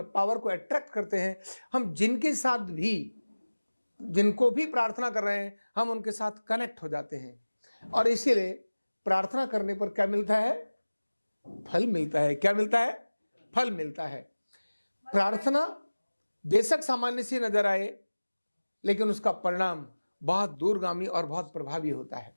पावर को अट्रैक्ट करते हैं, हम जिनको भी प्रार्थना कर रहे हैं, हम उनके साथ कनेक्ट हो जाते हैं। और इसीलिए प्रार्थना करने पर क्या मिलता है? फल मिलता है। क्या मिलता है? फल मिलता है। प्रार्थना बेशक सामान्य सी नजर आए, लेकिन उसका परिणाम बहुत दूरगामी और बहुत प्रभावी होता है।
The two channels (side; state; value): both; inverted; correlation -1.00